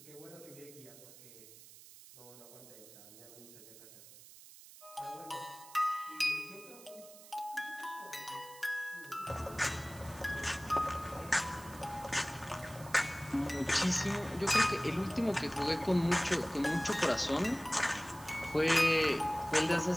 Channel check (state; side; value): noise; right; hiss, 19 dB below the sound